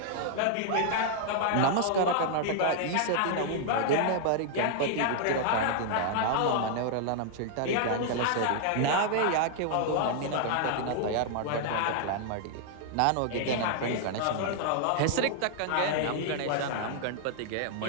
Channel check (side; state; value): both; different; correlation -0.01